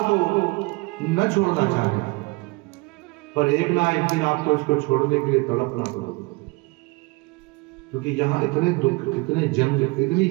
को न छोड़ना चाहते, पर एक ना एक दिन आपको इसको छोड़ने के लिए तड़पना पड़ेगा, क्योंकि यहाँ इतने दुख, इतने जंग, इतनी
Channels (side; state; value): left; quieter; 25.5 dB